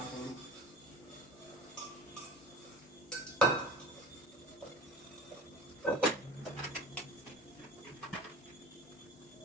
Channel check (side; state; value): both; normal; correlation 0.37